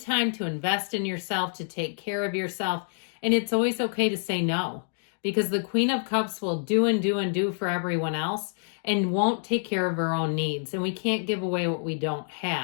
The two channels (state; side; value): silent; right; digital silence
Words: to invest in yourself, to take care of yourself. And it's always okay to say no, because the Queen of Cups will do and do and do for everyone else and won't take care of her own needs. And we can't give away what we don't